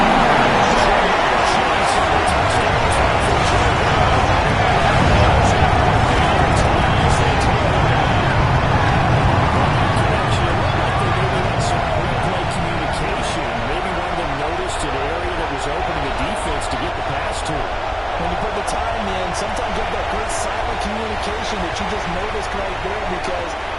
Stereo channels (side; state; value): both; identical; correlation 1.00